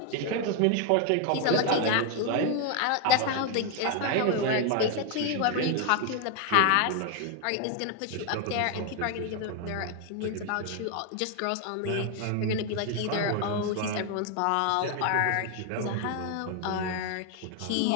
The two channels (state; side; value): different; both; correlation 0.01